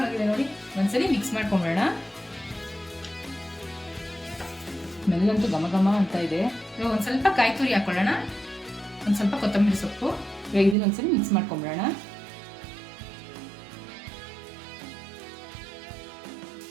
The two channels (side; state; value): left; drops out; at 10.8 s